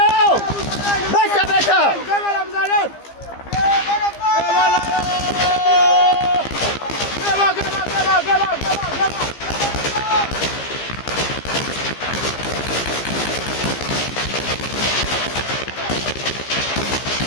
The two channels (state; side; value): late; right; 15 ms